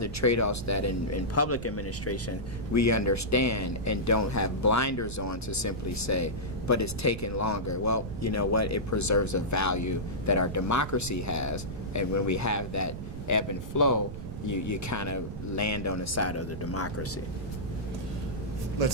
trade-offs that in public administration we understand and don't have blinders on to simply say, but it's taking longer. Well, you know what? It preserves a value that our democracy has, and when we have that ebb and flow, you kind of land on the side of the democracy.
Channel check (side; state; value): right; noise; rumble, 9 dB below the sound